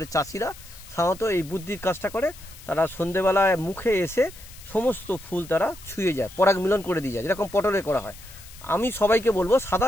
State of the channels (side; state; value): left; noise; hiss, 19 dB below the sound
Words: চাষিরা সাধারণত এই বুদ্ধির কাজটা করে। তারা সন্ধেবেলায় মুখে এসে সমস্ত ফুল তারা ছুঁয়ে যায়, পরাগ মিলন করে দিয়ে যায়, যেরকম পটলে করা হয়। আমি সবাইকে বলবো সাদা